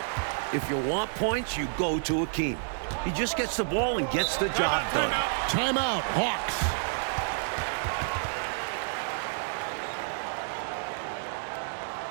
If you want points, you go to Akeem. He just gets the ball and gets the job done. Timeout, Hawks.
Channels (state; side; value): silent; left; 58 dB below the other